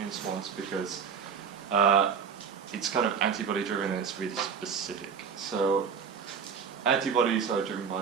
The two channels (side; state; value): left; quieter; 6.5 dB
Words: response because it's kind of antibody-driven and it's really specific. So antibodies are driven